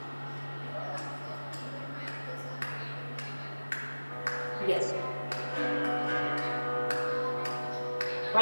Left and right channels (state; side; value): inverted; both; correlation -1.00